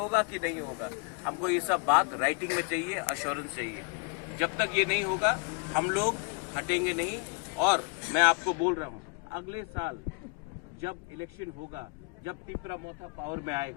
कि नहीं होगा, हमको ये सब बात राइटिंग में चाहिए, अश्योरेंस चाहिए। जब तक ये नहीं होगा हम लोग हटेंगे नहीं। और मैं आपको बोल रहा हूँ अगले साल जब इलेक्शन होगा, जब तिपरा मोथा पावर में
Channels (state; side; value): quieter; right; 34.0 dB